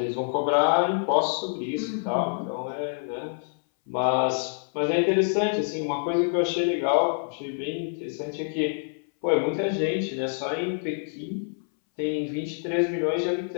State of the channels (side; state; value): right; silent; 60 dB below the other